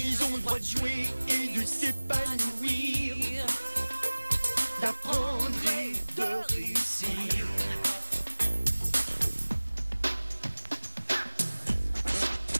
ont le droit de jouer et de s'épanouir, d'apprendre et de réussir.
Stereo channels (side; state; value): both; inverted; correlation -1.00